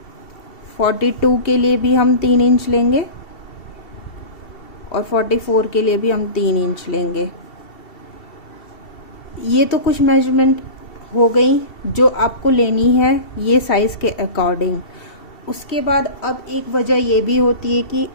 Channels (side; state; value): right; late; 2.7 ms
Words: 42 के लिए भी हम 3 इंच लेंगे और 44 के लिए भी हम 3 इंच लेंगे। ये तो कुछ मेजरमेंट हो गई जो आपको लेनी है ये साइज़ के अकॉर्डिंग। उसके बाद अब एक वजह ये भी होती है कि